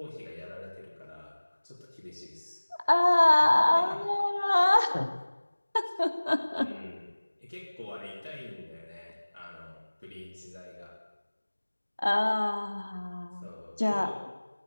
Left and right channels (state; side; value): inverted; both; correlation -1.00